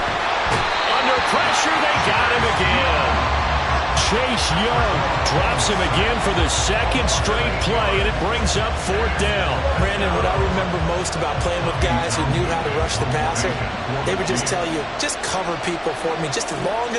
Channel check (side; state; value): both; identical; correlation 1.00